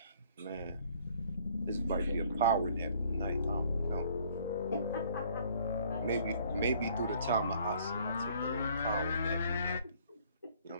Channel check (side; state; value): both; inverted; correlation -0.59